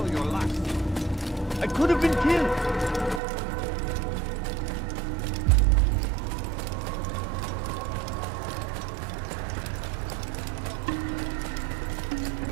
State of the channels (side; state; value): left; drops out; at 3.2 s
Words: your last. I could have been killed.